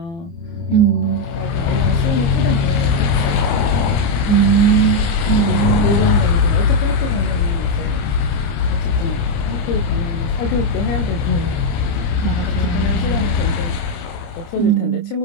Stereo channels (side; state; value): right; late; 29 ms